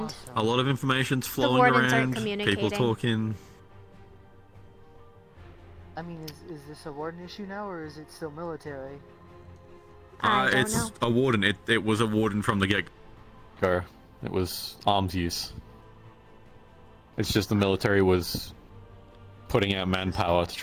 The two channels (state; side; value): identical; both; correlation 1.00